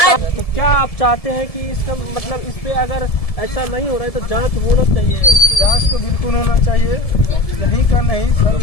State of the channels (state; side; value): late; right; 1.7 ms